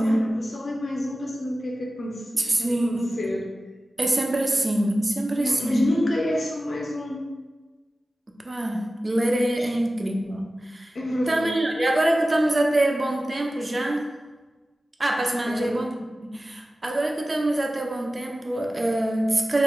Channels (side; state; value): both; normal; correlation 0.95